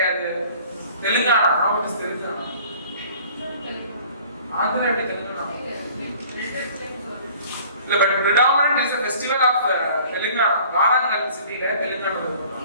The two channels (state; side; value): inverted; both; correlation -0.50